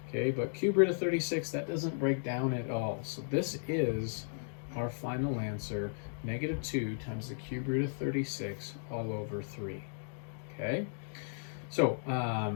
Okay, but cube root of 36, that doesn't break down at all. So this is our final answer, negative 2 times the cube root of 36 all over 3. Okay, so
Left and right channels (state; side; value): silent; right; digital silence